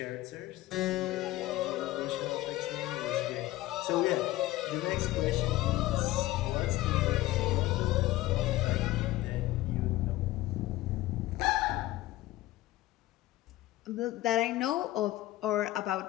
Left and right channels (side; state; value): right; quieter; 16.8 dB